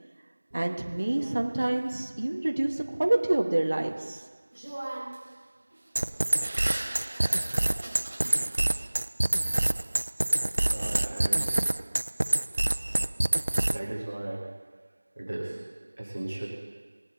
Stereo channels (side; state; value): both; inverted; correlation -1.00